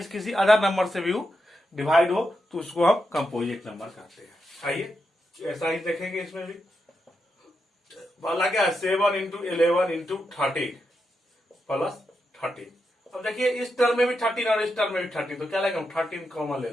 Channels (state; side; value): normal; both; correlation 0.85